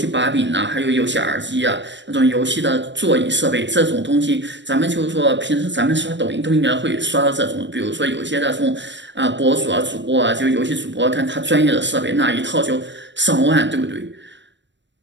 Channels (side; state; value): left; late; 0.53 ms